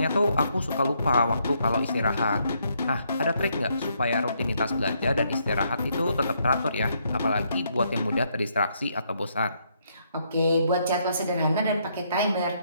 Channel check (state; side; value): inverted; both; correlation -0.74